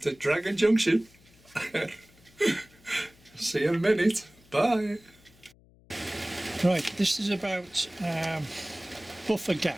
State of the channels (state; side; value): noise; left; hum, 28 dB below the sound